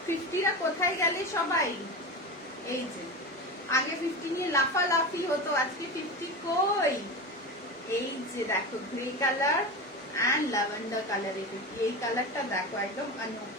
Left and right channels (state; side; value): normal; both; correlation 0.25